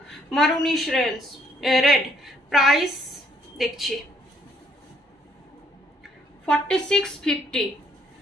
মারুনিশ রেড। প্রাইস দেখছি 4650,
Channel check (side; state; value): both; normal; correlation 0.67